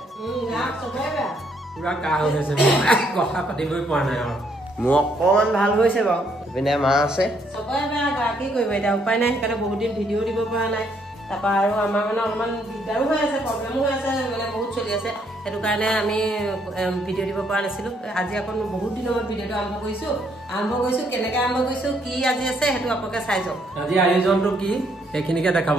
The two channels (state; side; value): normal; both; correlation 0.71